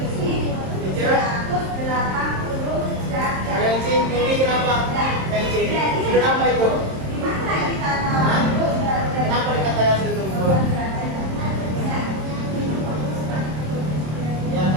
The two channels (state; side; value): late; left; 27 ms